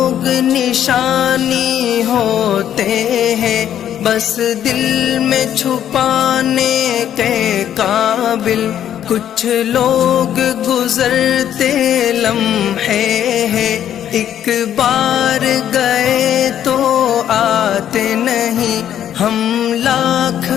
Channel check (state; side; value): quieter; right; 10.4 dB